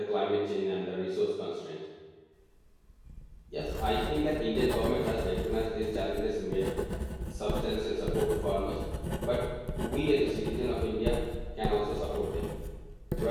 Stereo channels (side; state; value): both; identical; correlation 1.00